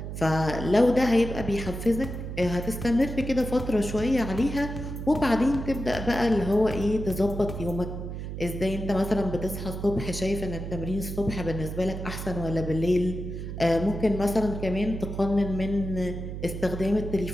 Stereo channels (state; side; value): noise; right; hum, 7 dB below the sound